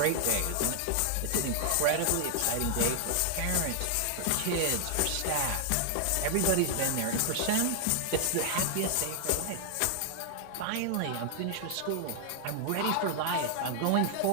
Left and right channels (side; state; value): both; different; correlation 0.00